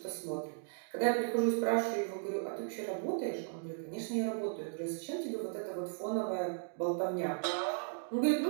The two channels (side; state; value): left; silent; digital silence